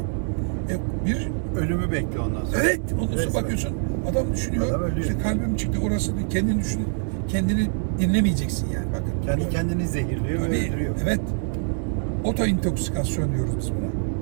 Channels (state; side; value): silent; left; 62 dB below the other